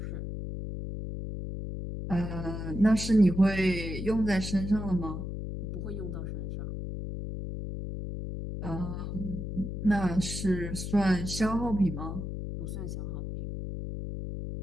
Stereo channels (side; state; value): left; noise; hum, 5 dB below the sound